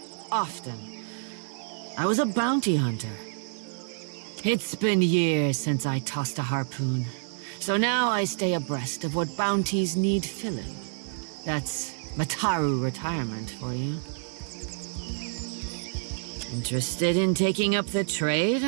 often. I was a bounty hunter. It's been years since I tossed a harpoon, so now I stay abreast of what bounties need filling. That's Mataru retirement for you. Interested in taking up the trade,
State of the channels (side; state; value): left; silent; digital silence